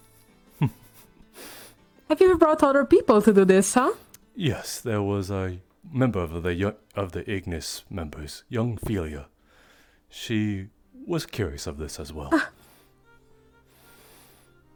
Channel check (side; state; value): both; identical; correlation 1.00